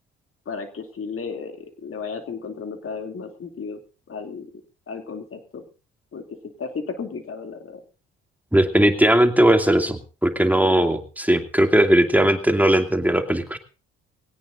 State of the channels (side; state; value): both; normal; correlation 0.86